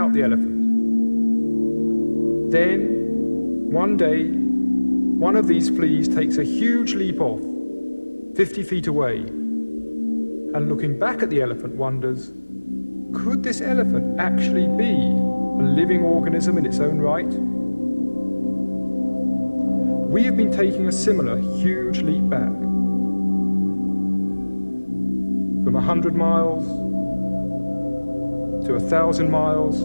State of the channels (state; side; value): inverted; both; correlation -1.00